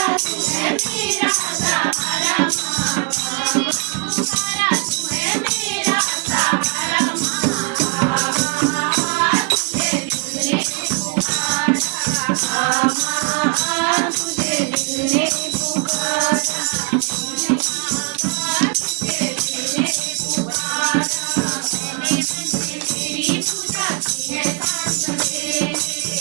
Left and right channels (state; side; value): quieter; left; 32.0 dB